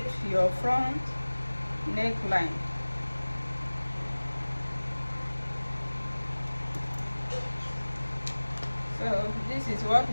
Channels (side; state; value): both; inverted; correlation -1.00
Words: your front neckline. So this is what